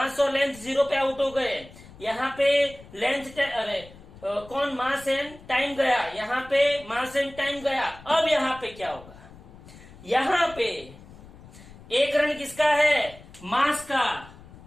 और लेंथ 0 पे आउट हो गए। यहाँ पे कौन, मास एंड टाइम गया, यहाँ पे मास एंड टाइम गया। अब यहाँ पे क्या होगा, यहाँ पे 1 रन किसका है, मास का।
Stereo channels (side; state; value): left; noise; rumble, 20 dB below the sound